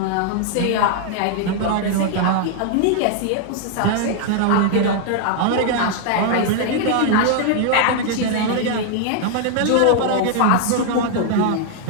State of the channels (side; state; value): both; different; correlation 0.00